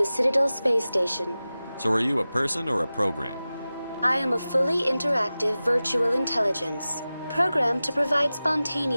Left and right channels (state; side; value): inverted; both; correlation -0.96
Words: Citadel space station. So are you a person or a program? I am a fully interactive virtual intelligence, programmed to provide